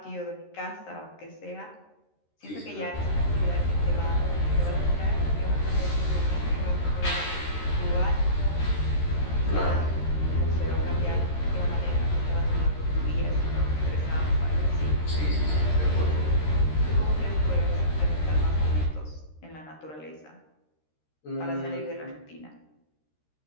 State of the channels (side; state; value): right; late; 13 ms